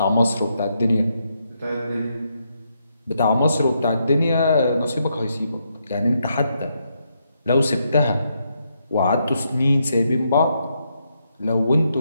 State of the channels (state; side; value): inverted; both; correlation -0.79